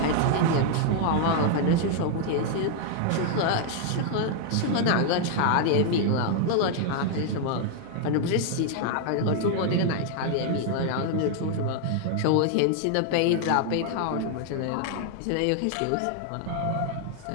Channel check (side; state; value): both; different; correlation 0.00